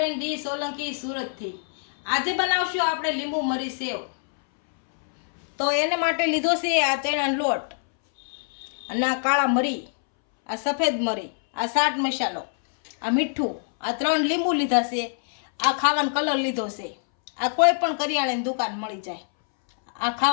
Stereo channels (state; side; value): silent; right; 62 dB below the other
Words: ડી સોલંકી સુરતથી. આજે બનાવશું આપણે લીંબુ મરી સેવ. તો એને માટે લીધો છે આ ચણાનો લોટ અને આ કાળા મરી, આ સફેદ મરી, આ ચાટ મસાલો, આ મીઠું, આ 3 લીંબુ લીધા છે, આ ખાવાનો કલર લીધો છે. આ કોઈ પણ કરિયાણાની દુકાન મળી જાય. આ